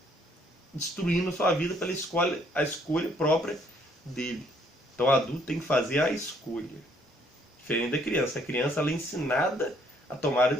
destruindo a sua vida pela a escolha própria dele. Então o adulto tem que fazer a escolha. Diferente da criança. A criança ela é ensinada a tomar a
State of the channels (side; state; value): both; normal; correlation 0.66